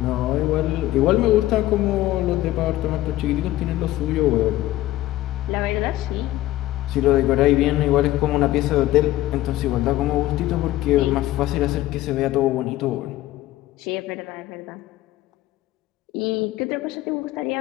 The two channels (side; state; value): right; quieter; 15.7 dB